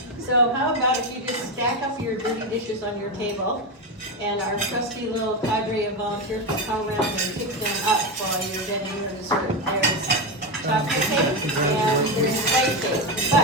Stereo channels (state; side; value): normal; both; correlation 0.13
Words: So how about if you just stack up your dirty dishes on your table, and our trusty little cadre of volunteers will come around and pick them up while you're getting your dessert. There's chocolate cake and there's white cake.